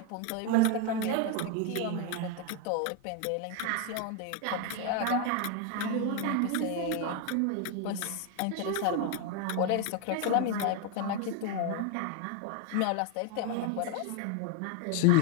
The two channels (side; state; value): both; different; correlation 0.01